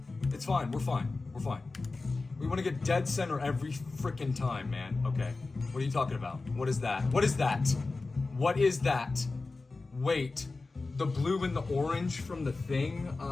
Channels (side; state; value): right; quieter; 3.6 dB